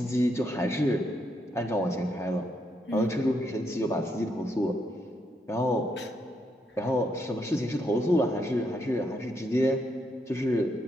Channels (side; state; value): both; normal; correlation 0.77